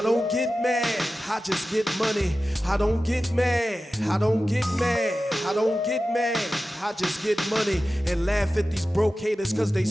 don't get mad, I just get money. I don't get mad, I don't get mad. I don't get mad, I just get money and laugh at these broke haters cause they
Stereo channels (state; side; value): normal; both; correlation 0.94